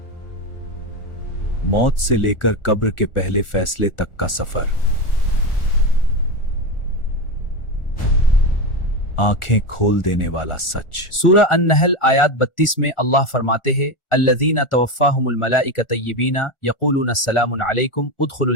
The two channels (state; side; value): late; right; 1.4 ms